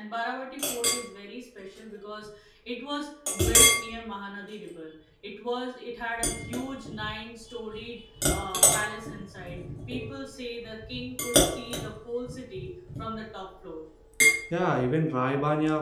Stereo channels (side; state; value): both; identical; correlation 1.00